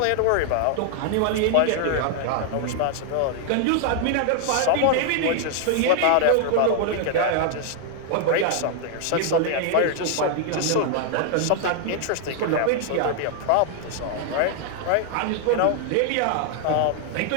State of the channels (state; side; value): different; both; correlation 0.00